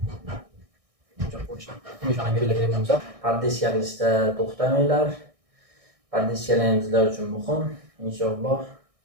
Shunaqa belgilagan bo'lsa, pardissiya qilishda to'xtamanglar. Pardissiyalar bizlar uchun muhim. Inshaalloh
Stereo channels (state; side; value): late; left; 1.6 ms